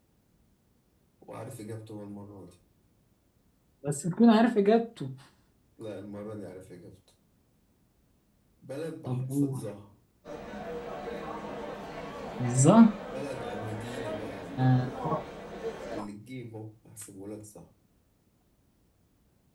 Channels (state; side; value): identical; both; correlation 1.00